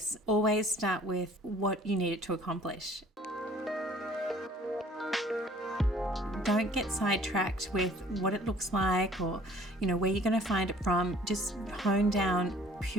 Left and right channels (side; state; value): both; normal; correlation 0.54